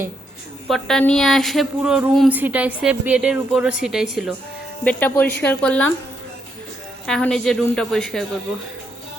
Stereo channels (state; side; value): normal; both; correlation 0.77